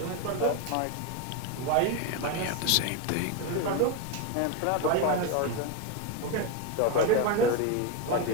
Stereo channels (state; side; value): different; both; correlation 0.02